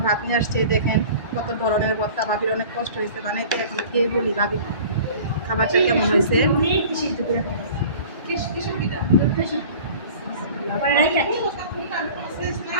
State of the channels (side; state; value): both; inverted; correlation -0.43